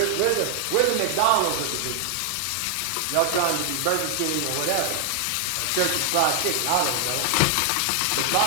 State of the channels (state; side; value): different; both; correlation 0.00